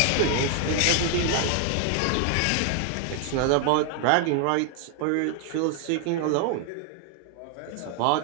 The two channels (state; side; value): different; both; correlation 0.00